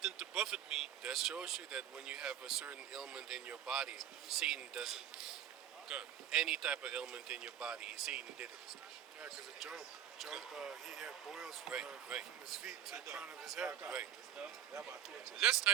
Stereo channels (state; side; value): quieter; left; 10.5 dB